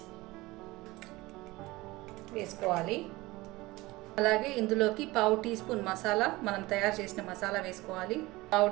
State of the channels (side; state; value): left; quieter; 20.6 dB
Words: వేసుకోవాలి. అలాగే ఇందులోకి 1/2 టీ స్పూన్ మసాలా, మనం తయారు చేసిన మసాలా వేసుకోవాలి, 1/2